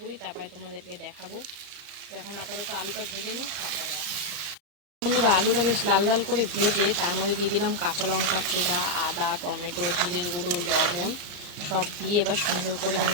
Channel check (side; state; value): left; late; 34 ms